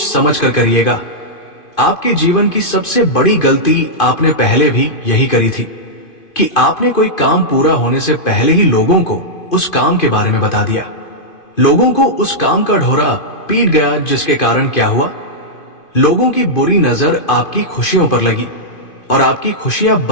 समझ कर करिएगा। आपके जीवन की सबसे बड़ी गलती आपने पहले भी यही करी थी कि आपने कोई काम पूरा होने से पहले ही लोगों को उस काम के बारे में बता दिया। लोगों को उस काम का ढोरा पीट गया, जिसके कारण क्या हुआ, लोगों की बुरी नजर आपकी खुशियों पर लगी और आपकी खुशियां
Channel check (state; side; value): late; right; 2.5 ms